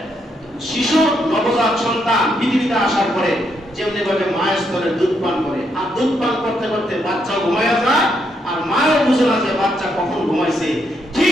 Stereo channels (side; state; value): both; normal; correlation 0.77